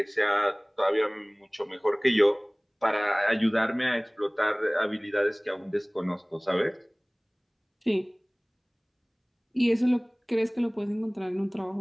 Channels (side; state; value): both; identical; correlation 1.00